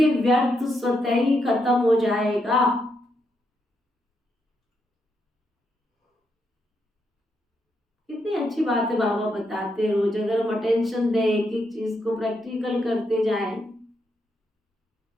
व्यर्थ स्वतः ही खत्म हो जाएगा। कितनी अच्छी बात है बाबा बताते हैं रोज। अगर हम अटेंशन दें, एक एक चीज को प्रैक्टिकल करते जाएं।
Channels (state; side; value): normal; both; correlation 0.80